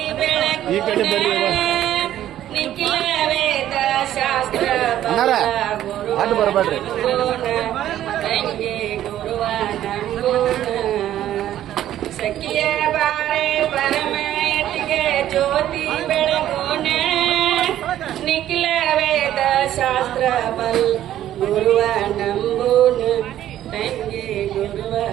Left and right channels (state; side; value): quieter; left; 12.2 dB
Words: ಈ ಕಡೆ ಬರ್ರಿ ಅಡ್ಡು ಬರಬೇಡ್ರಿ ಸಖಿಯ ಬಾರೆ ಪರಮಯತಿಗೆ ಜ್ಯೋತಿ ಬೆಳಗೋಣ ನಿಖಿಲ ವೇದ ಶಾಸ್ತ್ರ ಬಲ್ ಗುರುವ ನಂಬೂನ ತಂಗಿ ಗುರುವ